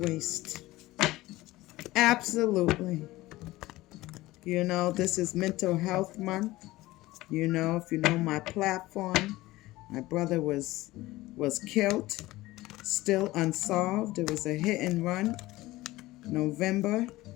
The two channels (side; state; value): right; quieter; 18.2 dB